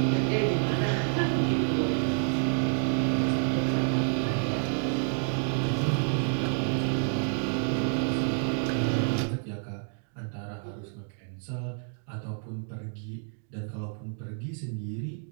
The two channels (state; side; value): silent; left; 58 dB below the other